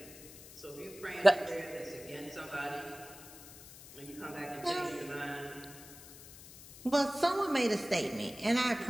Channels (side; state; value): left; noise; hiss, 17 dB below the sound